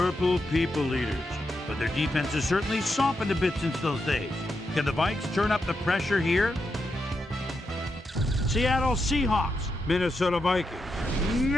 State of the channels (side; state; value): both; normal; correlation 0.85